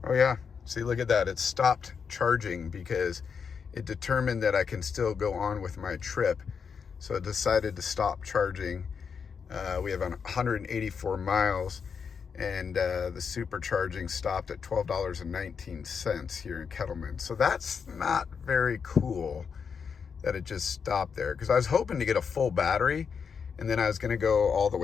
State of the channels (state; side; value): quieter; right; 6.3 dB